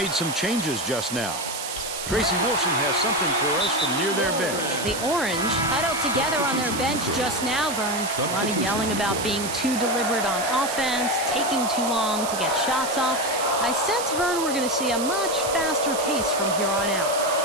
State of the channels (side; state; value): right; noise; hiss, 6 dB below the sound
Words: some changes just now. Tracy Wilson has something for us from near their bench. The Orange huddled together on their bench just now, Vern. A lot of yelling about being too deliberate on offense, taking too long to get shots off. I sense, Vern, we're going to see a much faster pace from here on out.